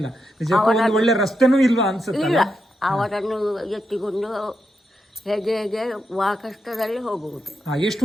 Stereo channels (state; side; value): normal; both; correlation 0.85